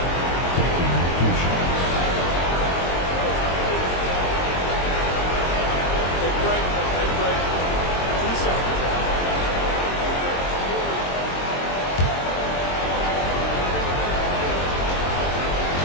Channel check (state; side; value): late; right; 22 ms